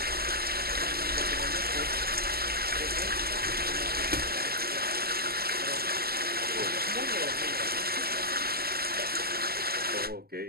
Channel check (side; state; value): left; late; 0.45 ms